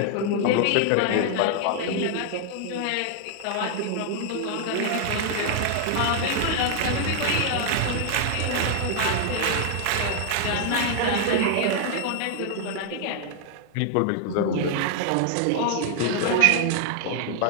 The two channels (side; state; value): both; different; correlation 0.00